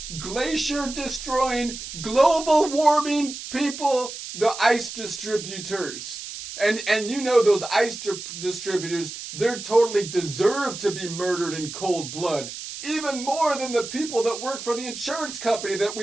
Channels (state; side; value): noise; right; hiss, 10 dB below the sound